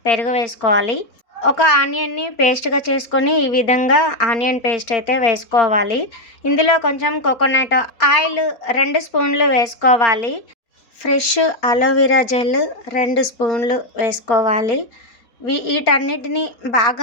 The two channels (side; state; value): right; late; 4.3 ms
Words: పెరుగు వేసుకోవాలి. ఒక ఆనియన్ని పేస్ట్గా చేసుకొని ఈ విధంగా ఆనియన్ పేస్ట్ అయితే వేసుకోవాలి. ఇందులో కొంచెం కోకోనట్ ఆయిల్ 2 స్పూన్లు వేసుకోవాలి. ఫ్రెష్ అలోవెరా జెల్ 2 స్పూన్లు వేసుకోవాలి. వీటన్నిటిని